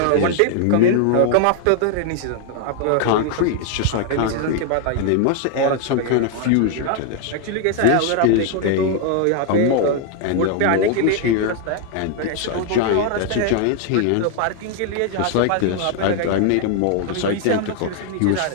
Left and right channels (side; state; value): both; different; correlation 0.00